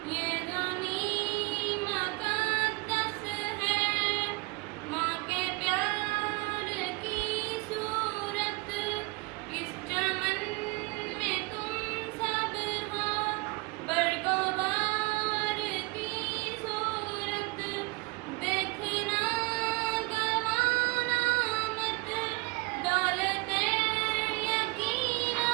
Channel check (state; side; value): quieter; left; 25.8 dB